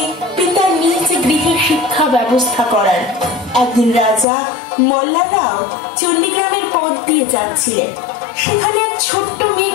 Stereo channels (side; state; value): right; drops out; at 4.2 s